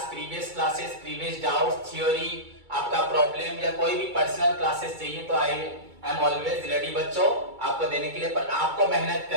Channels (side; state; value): left; late; 2.3 ms